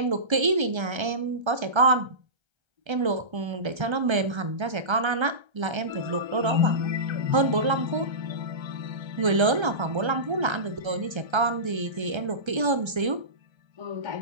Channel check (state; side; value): late; left; 1.3 ms